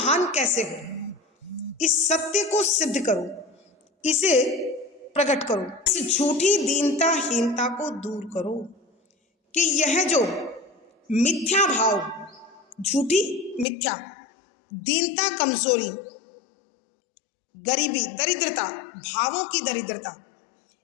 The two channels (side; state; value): right; drops out; at 13.7 s